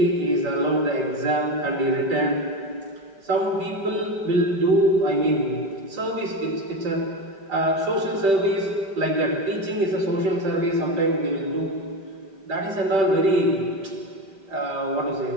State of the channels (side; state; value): left; late; 5.1 ms